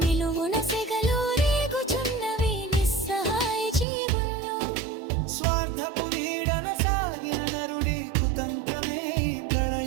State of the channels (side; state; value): left; drops out; at 3.9 s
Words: సెగలు రేగుచున్నవి నిస్సహాయ జీవుల్లో. స్వార్థపు నీడన సాగిన నరుడి కుతంత్రమే ఈ